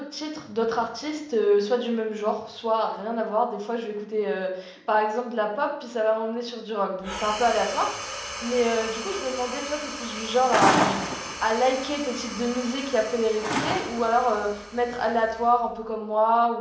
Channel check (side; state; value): both; identical; correlation 1.00